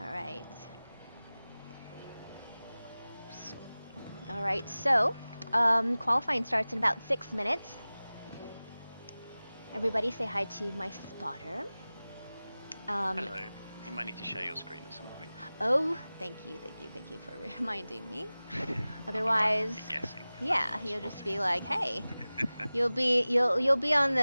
right. All right, so qualifying starts in about 6 minutes. Everybody say hi to my spotter. Hello. You might need to share your screen at some point. Oh, thank you for reminding me. Otherwise, I'll be guessing. yeah, you'll just be like, hey, you'll be on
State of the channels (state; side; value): inverted; both; correlation -0.98